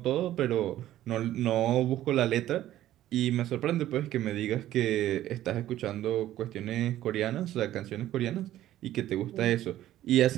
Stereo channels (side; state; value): left; quieter; 13.4 dB